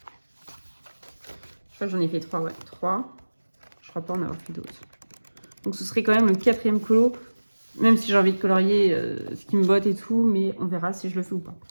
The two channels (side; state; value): both; inverted; correlation -1.00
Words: crois que j'en ai fait 3, ouais, 3. Je crois pas en avoir fait d'autres. Donc ce serait quand même le 4e colo, même si j'ai envie de colorier ce qui me botte et tout, mais on verra si je le fais ou pas.